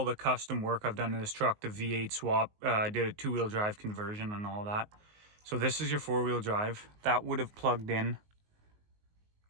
the custom work I've done in this truck, the V8 swap, I did a two-wheel drive conversion and all that. So this is your four-wheel drive. That would have plugged in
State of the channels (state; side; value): late; left; 19 ms